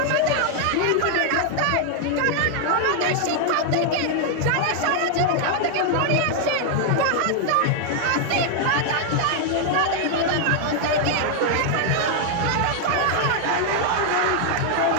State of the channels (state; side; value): different; both; correlation 0.00